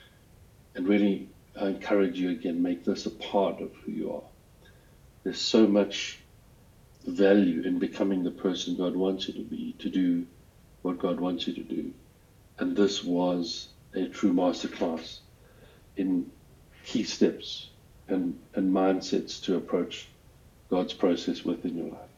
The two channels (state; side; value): identical; both; correlation 1.00